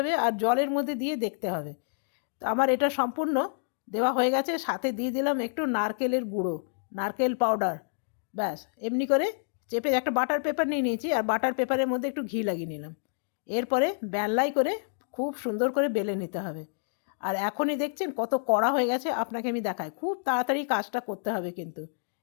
আর জলের মধ্যে দিয়ে দেখতে হবে। তো আমার এটা সম্পূর্ণ দেওয়া হয়ে গেছে, সাথে দিয়ে দিলাম একটু নারকেলের গুঁড়ো, নারকেল পাউডার। ব্যাস এমনি করে চেপে একটা বাটার পেপার নিয়ে নিয়েছি আর বাটার পেপারের মধ্যে একটু ঘি লাগিয়ে নিলাম। এরপরে বেলাই করে খুব সুন্দর করে বেলে নিতে হবে। আর এখনই দেখছেন কত কড়া হয়ে গেছে, আপনাকে আমি দেখাই, খুব তাড়াতাড়ি কাজটা করতে হবে কিন্তু।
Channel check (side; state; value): right; silent; digital silence